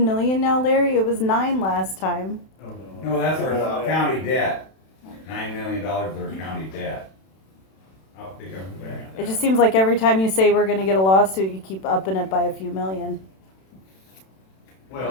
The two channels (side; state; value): right; late; 31 ms